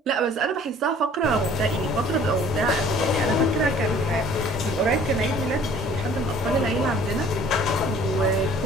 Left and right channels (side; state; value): both; normal; correlation 0.53